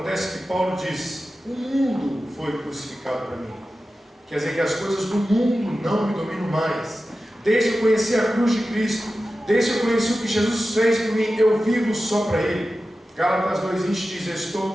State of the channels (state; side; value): normal; both; correlation 0.94